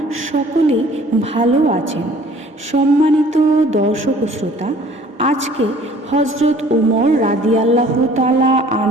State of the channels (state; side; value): normal; both; correlation 0.53